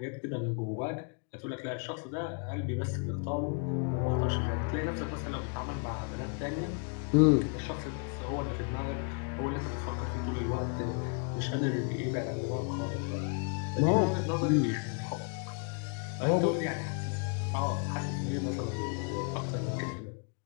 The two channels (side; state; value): right; quieter; 38.5 dB